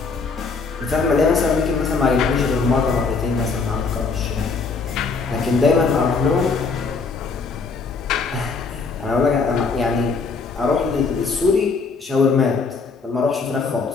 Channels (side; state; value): right; quieter; 4.6 dB